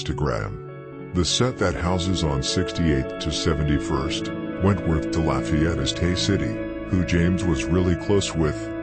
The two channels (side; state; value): both; identical; correlation 1.00